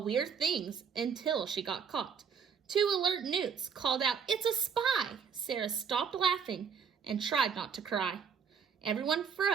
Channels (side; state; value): left; quieter; 6.6 dB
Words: things until she got caught. 2 alert newts called out, "It's a spy!" Sarah stopped laughing and tried not to cry. Everyone